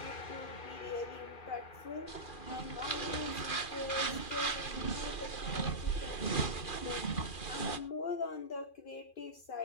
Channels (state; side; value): late; right; 2.4 ms